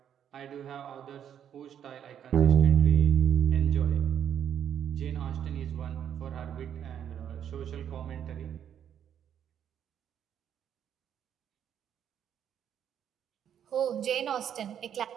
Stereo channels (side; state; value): left; quieter; 9.3 dB